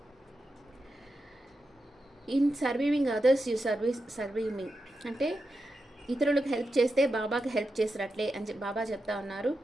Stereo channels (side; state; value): both; normal; correlation 0.89